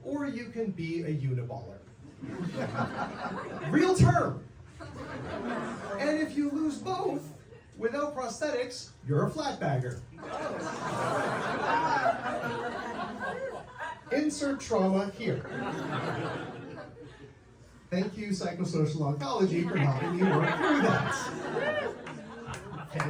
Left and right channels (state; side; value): identical; both; correlation 1.00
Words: or you can be a uniballer. Real term. And if you lose both, without prosthetics, you're a flatbagger. Insert trauma here. Thank you, psychosocial oncology, for helping me work through that.